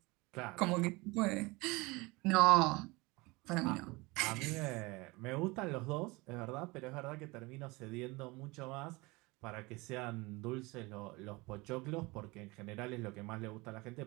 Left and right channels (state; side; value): quieter; left; 24.0 dB